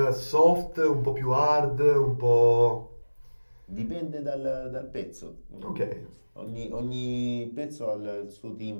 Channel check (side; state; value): both; inverted; correlation -1.00